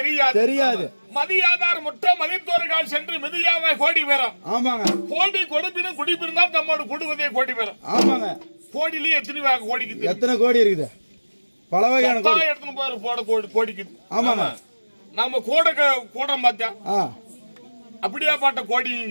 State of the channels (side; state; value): both; inverted; correlation -1.00